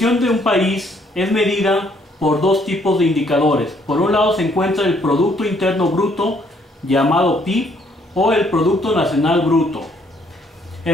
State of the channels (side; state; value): both; normal; correlation 0.67